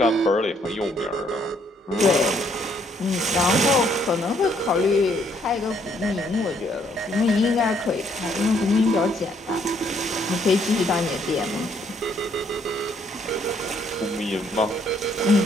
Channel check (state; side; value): normal; both; correlation 0.68